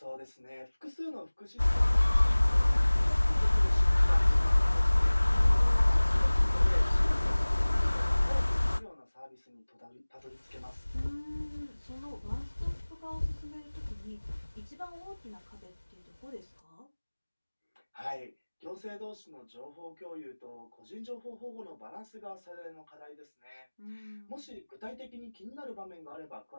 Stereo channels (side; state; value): both; inverted; correlation -1.00